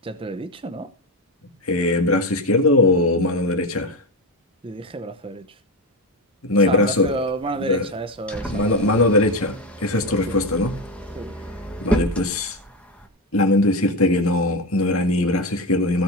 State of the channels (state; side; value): normal; both; correlation 0.15